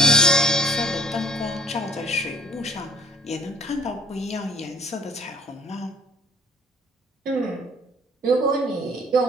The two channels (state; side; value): normal; both; correlation 0.55